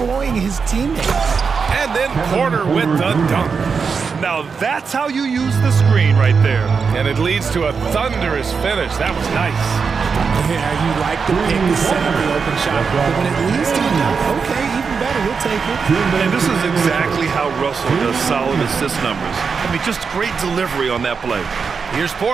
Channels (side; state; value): left; quieter; 5.5 dB